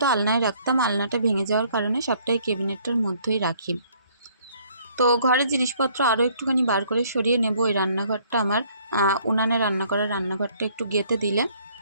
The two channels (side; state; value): both; inverted; correlation -0.62